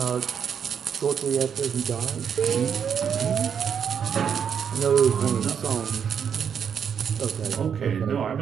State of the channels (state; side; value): quieter; left; 7.5 dB